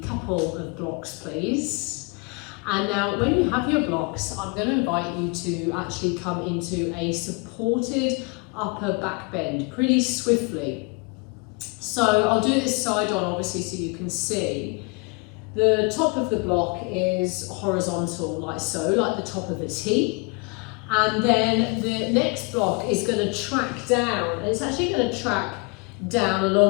couple of blocks, please. And now when you have your blocks, I'm going to invite you to actually come into a supported upper back bend pretty swiftly. So I'll do this side on obviously so you can see. The top of the block is horizontal like so, like the top of a T. And then the next block is going to track down, and it's actually going to track down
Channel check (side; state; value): right; quieter; 30.3 dB